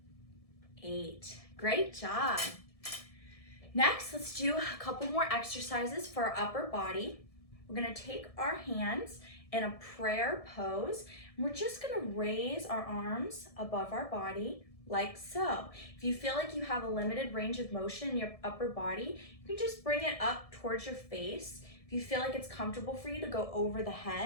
8. Great job. Next, let's do a couple more exercises for our upper body. We're gonna take our hands in a prayer pose, and we're just gonna raise our arms above our body like so. If you feel like you have a limited range of motion in your upper body, you can just bring it up towards your face. If you feel like it's comfortable for you to go over the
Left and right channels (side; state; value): right; late; 1.7 ms